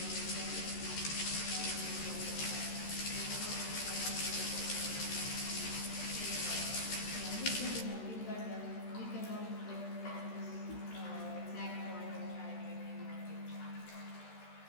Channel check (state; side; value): late; right; 13 ms